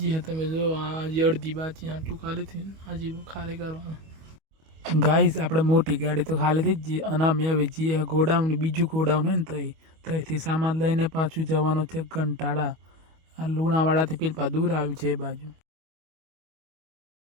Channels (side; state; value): left; late; 25 ms